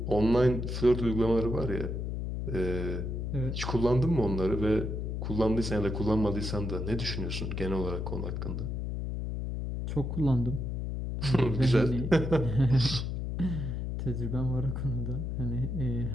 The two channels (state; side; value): noise; left; hum, 3 dB below the sound